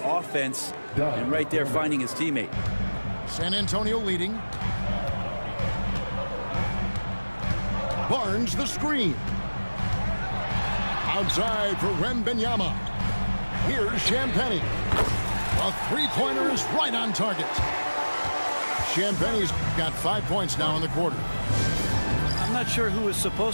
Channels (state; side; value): inverted; both; correlation -1.00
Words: offense and right there finding his teammate. San Antonio leading. Barnes the screen. Outside for Wembanyama. Here's Champagnie. A three-pointer is right on target. Champagnie's got 5 points now in the quarter. I'm not sure who was